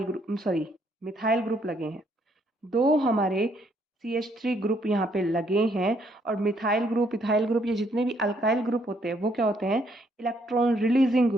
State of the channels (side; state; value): both; normal; correlation 0.70